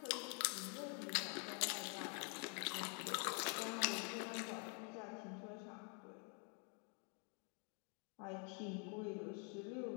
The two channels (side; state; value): right; quieter; 39.2 dB